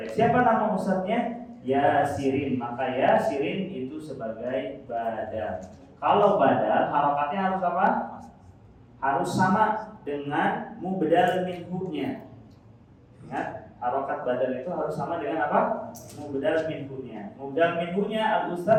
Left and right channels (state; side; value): identical; both; correlation 1.00